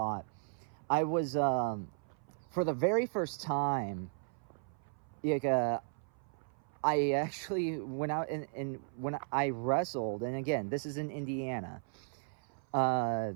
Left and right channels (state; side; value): silent; left; 54 dB below the other